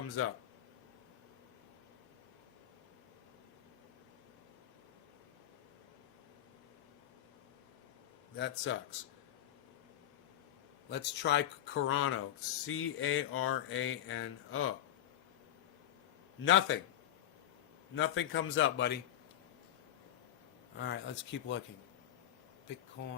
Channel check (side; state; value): right; quieter; 12.0 dB